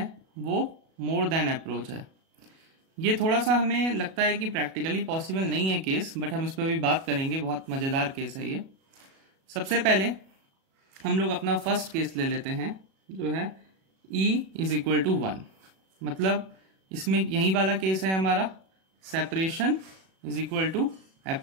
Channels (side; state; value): left; late; 37 ms